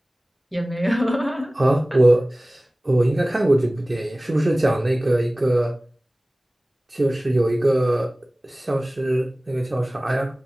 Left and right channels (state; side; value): normal; both; correlation 0.98